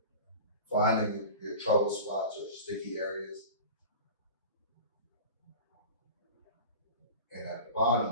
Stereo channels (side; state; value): both; inverted; correlation -0.35